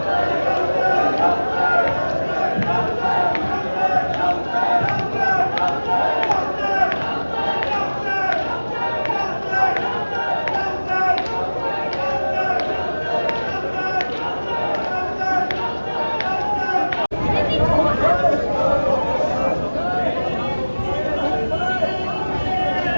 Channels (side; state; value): both; inverted; correlation -1.00